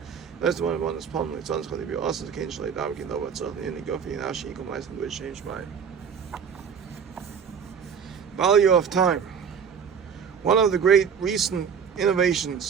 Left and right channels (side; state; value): left; quieter; 6.9 dB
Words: That's the one that's palm like Tzon Chali Bi Osas the Kein Shalai Dav Kin Dov Tzon Yini Gofi Nashi Yikom Leisen Duri Shem Shmai. Value of time. One of the great recent